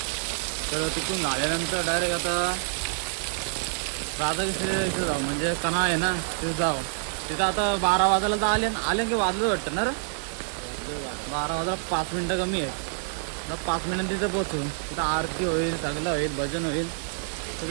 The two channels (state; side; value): silent; left; digital silence